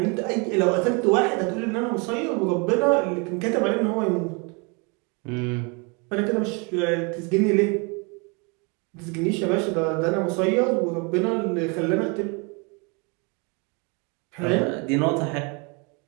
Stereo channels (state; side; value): quieter; left; 31.7 dB